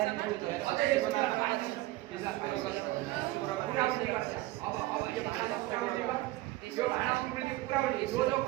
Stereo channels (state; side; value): quieter; left; 18.1 dB